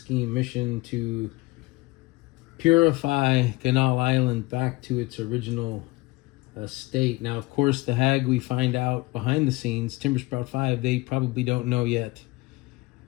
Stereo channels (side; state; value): right; quieter; 22.3 dB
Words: mission to purify Ganal Island back to its original state. Now, of course, the hag, we find out behind the scenes, Timbersprout 5, they probably don't know yet.